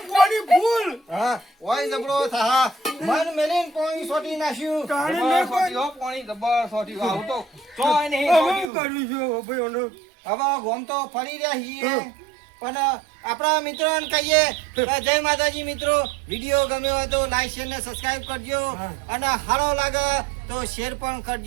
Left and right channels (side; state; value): left; drops out; at 8.7 s